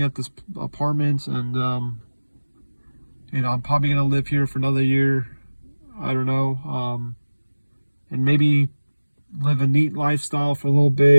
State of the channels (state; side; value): inverted; both; correlation -1.00